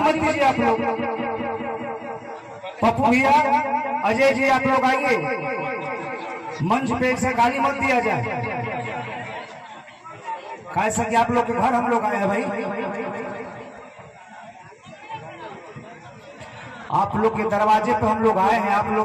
दीजिए आप लोग। पप्पू भैया, अजय जी, आप लोग आइए, मंच पे से गाली मत दिया जाए, कैसा कि आप लोग के घर हम लोग आए हैं भाई, आप लोग के दरवाजे पे हम लोग आए हैं, आप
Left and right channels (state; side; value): identical; both; correlation 1.00